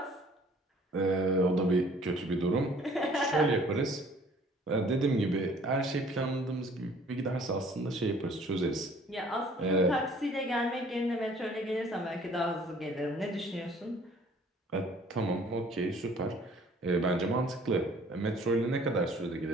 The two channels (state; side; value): normal; both; correlation 0.55